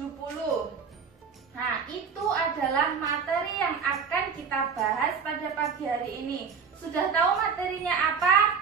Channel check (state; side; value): quieter; left; 6.0 dB